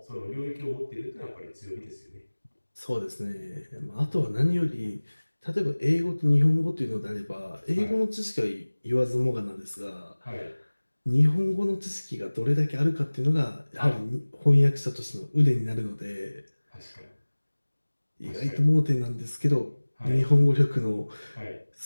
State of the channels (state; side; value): inverted; both; correlation -1.00